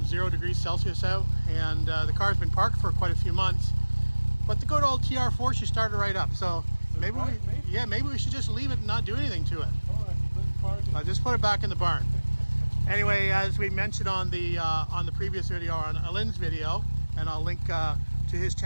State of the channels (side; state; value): both; inverted; correlation -1.00